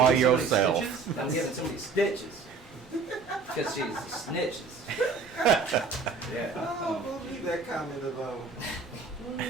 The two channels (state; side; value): quieter; left; 4.5 dB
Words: of these yourself. stitches? I'm giving somebody stitches. Because she's snitches. Yeah. Oh, believe that comment about.